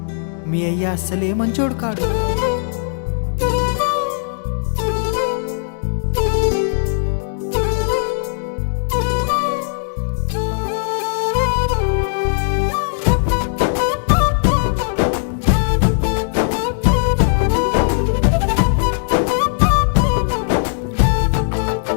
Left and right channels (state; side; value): silent; right; 65 dB below the other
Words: మీ అయ్య అస్సలే మంచోడు కాడు.